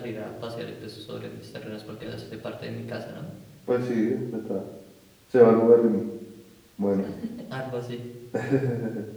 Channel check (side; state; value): both; identical; correlation 1.00